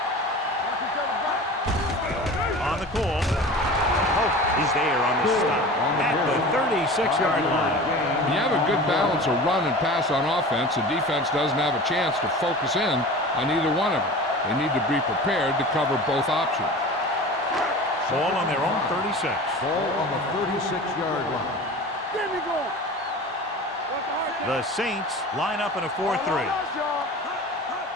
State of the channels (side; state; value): both; normal; correlation 0.36